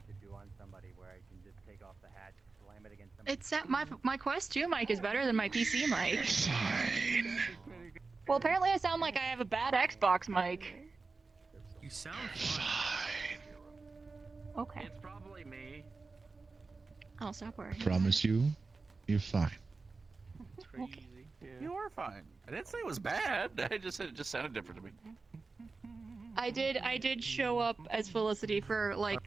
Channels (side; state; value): left; quieter; 4.0 dB